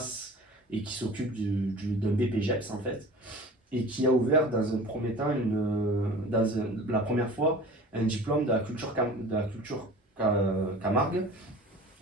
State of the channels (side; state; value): both; normal; correlation 0.40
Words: et qui s'occupe d'un BPGEPS en fait, et qui a ouvert dans un premier temps, la première fois, un diplôme de la culture Camargue